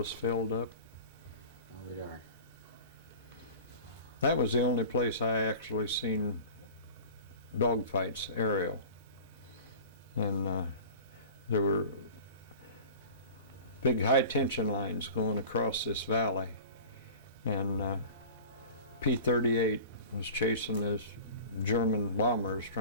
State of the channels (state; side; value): inverted; both; correlation -0.40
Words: filled up. Oh, darn. That was the only place I actually seen dogfights aerial. And there were big high tension lines going across this valley. And P-38 was chasing these German bombers